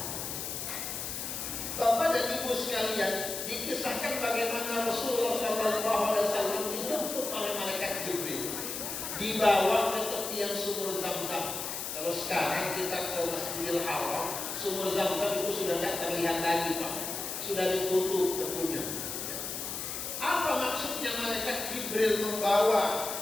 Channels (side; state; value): left; noise; hiss, 5 dB below the sound